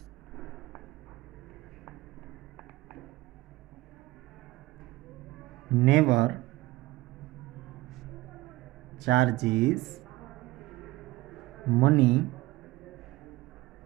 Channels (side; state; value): left; quieter; 18.9 dB